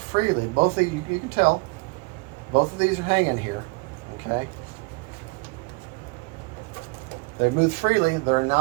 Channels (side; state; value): left; quieter; 27.9 dB